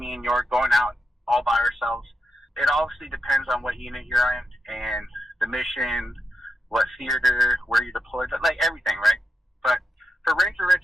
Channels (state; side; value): normal; both; correlation 0.86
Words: and York going out all by ourselves. It obviously depends on what unit you're in, and the mission, what theater, where you're deployed, like, everything, right? But for Ranger